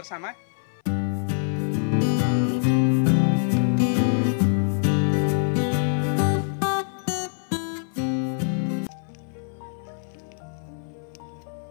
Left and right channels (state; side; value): silent; right; 58 dB below the other